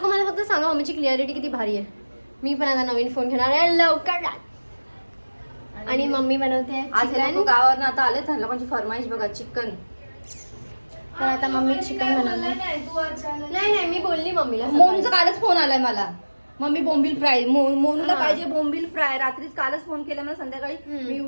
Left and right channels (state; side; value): inverted; both; correlation -1.00